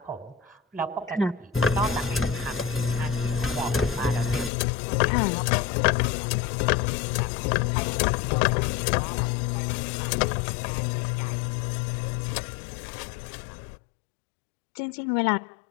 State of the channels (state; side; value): drops out; right; at 4.5 s